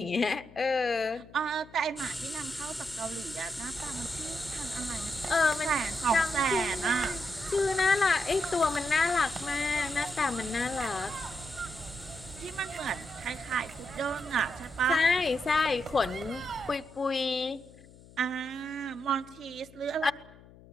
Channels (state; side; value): noise; left; hum, 22 dB below the sound